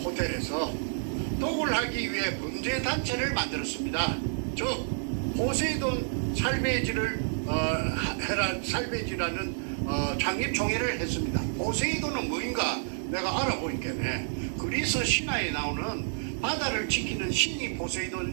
도굴하기 위해 범죄단체를 만들었습니다. 즉 포세이돈 살베이지를 살베이지라는 창립총회를 했습니다. 포세이돈은 뭐인가 내가 알아보니까 그리스 신화에 나오는 바다를 지키는 신이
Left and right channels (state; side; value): silent; left; digital silence